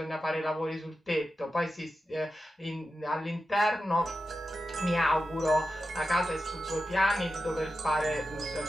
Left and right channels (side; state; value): both; normal; correlation 0.91